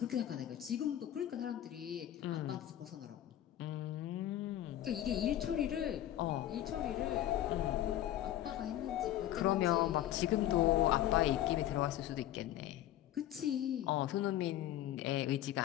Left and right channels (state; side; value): quieter; right; 12.6 dB